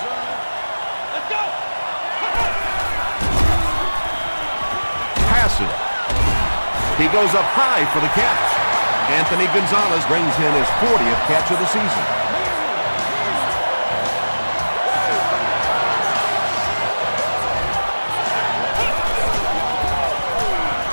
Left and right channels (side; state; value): both; inverted; correlation -1.00